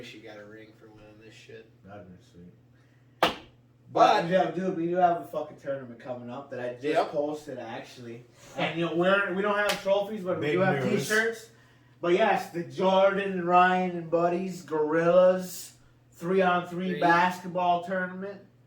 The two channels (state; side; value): identical; both; correlation 1.00